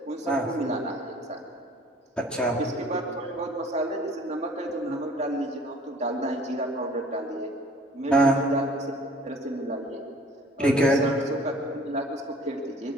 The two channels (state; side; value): normal; both; correlation 0.52